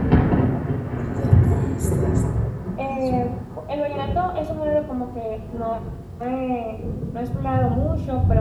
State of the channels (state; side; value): identical; both; correlation 1.00